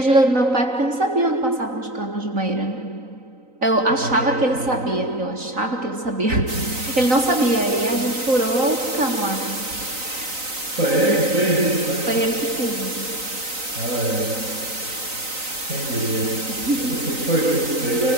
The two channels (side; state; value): left; late; 3.9 ms